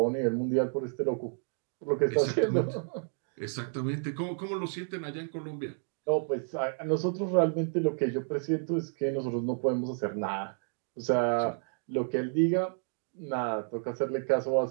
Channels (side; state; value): left; silent; digital silence